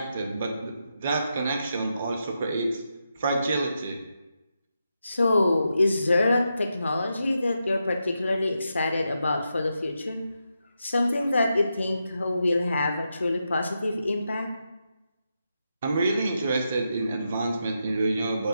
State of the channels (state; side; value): inverted; both; correlation -0.85